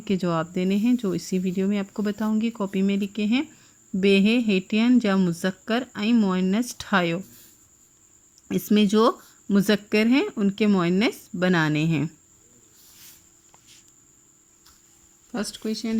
जवाब देने हैं जो इसी वीडियो में आपको बताऊंगी। कॉपी में लिखे हैं, बेहे हेटियन जा मुज़क्कर ऐं मुअन्नस ठायो। इसमें जो मुज़क्कर हैं उनके मुअन्नस बनाने हैं। फर्स्ट क्वेश्चन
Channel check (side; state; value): both; identical; correlation 1.00